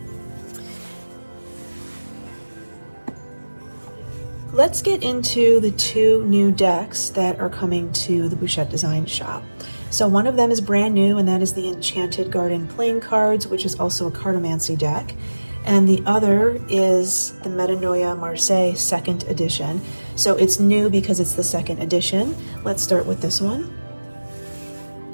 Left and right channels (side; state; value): both; inverted; correlation -1.00